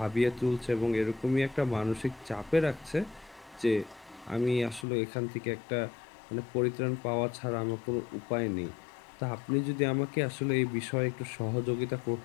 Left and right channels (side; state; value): right; drops out; at 4.9 s